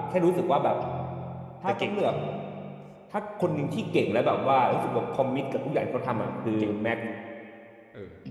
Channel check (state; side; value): identical; both; correlation 1.00